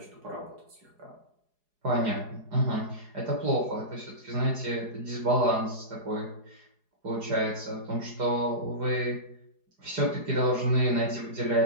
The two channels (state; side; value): late; left; 4.8 ms